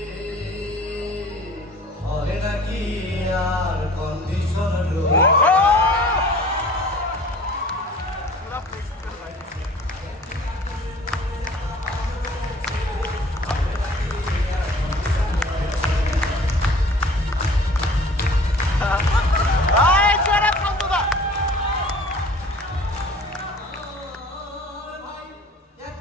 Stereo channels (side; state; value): both; normal; correlation 0.47